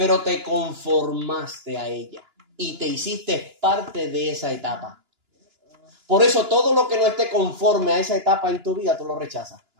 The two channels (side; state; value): left; late; 2.9 ms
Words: te conformaste a ella. Y te hiciste parte de esa etapa. Por eso todo lo que no esté conforme a esa etapa en tu vida, tú lo rechazas.